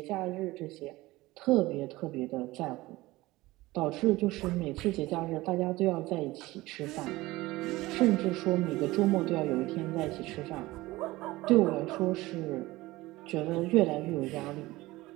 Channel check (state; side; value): quieter; left; 19.2 dB